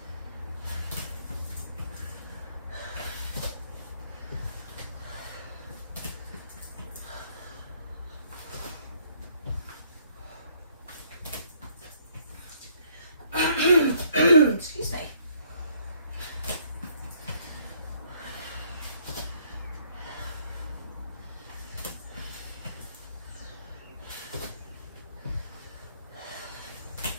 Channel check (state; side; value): inverted; both; correlation -0.66